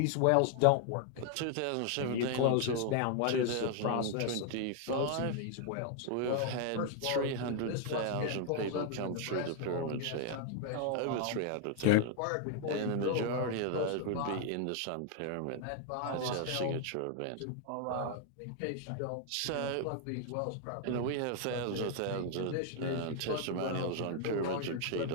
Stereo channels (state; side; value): different; both; correlation 0.00